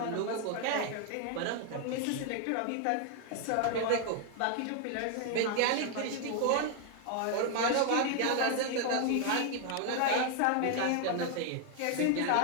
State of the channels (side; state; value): both; different; correlation 0.00